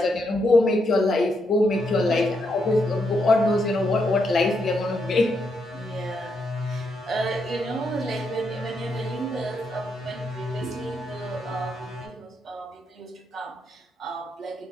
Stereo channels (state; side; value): normal; both; correlation 0.80